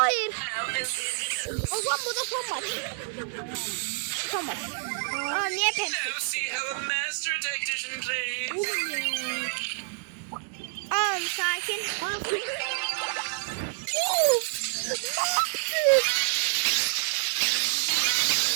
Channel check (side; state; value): left; silent; 59 dB below the other